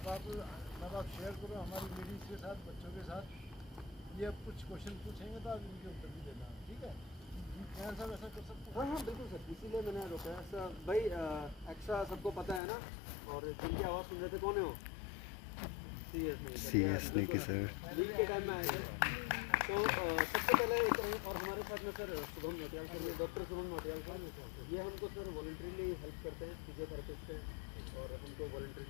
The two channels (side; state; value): right; drops out; at 12.6 s